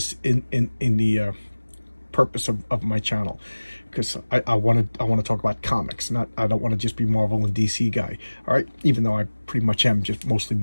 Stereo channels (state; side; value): inverted; both; correlation -1.00